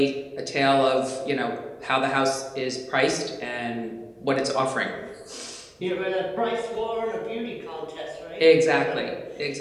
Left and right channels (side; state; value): both; identical; correlation 1.00